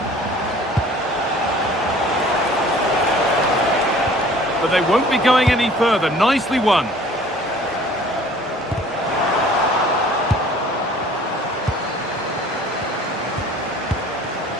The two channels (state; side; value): normal; both; correlation 0.50